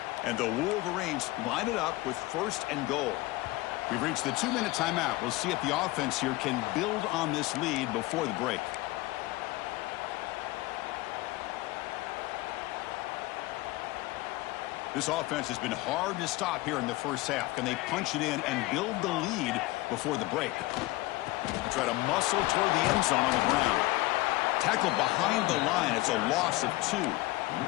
And the Wolverines line it up with 1st and goal. We've reached the 2-minute timeout. We'll see if the offense here can build on this lead before the break. This offense has been hard to stop here in the first half. Can they punch it in and build the lead before the break? They try to muscle toward the end zone on the ground. Tackle behind the line. It's a loss of 2.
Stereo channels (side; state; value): right; quieter; 19.8 dB